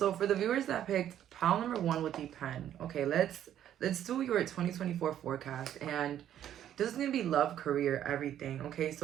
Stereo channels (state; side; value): quieter; left; 10.9 dB